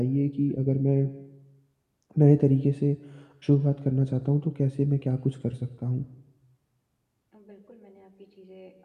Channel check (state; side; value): identical; both; correlation 1.00